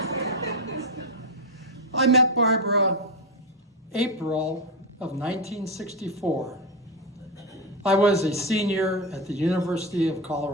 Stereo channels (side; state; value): both; normal; correlation 0.11